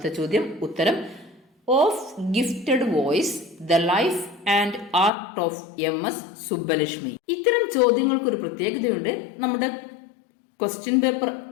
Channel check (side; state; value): right; drops out; at 5.1 s